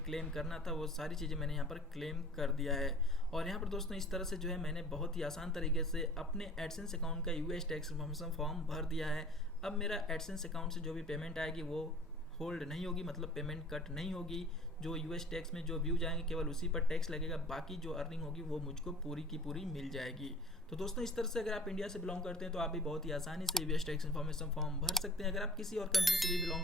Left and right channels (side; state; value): both; normal; correlation 0.46